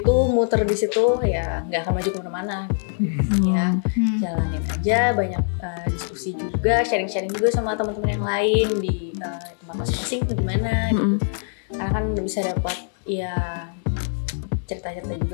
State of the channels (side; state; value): right; silent; digital silence